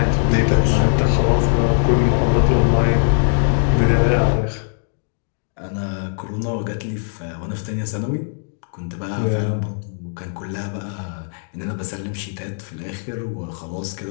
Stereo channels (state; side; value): silent; right; digital silence